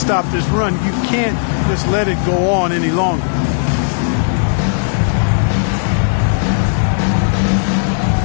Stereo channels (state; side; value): silent; right; 70 dB below the other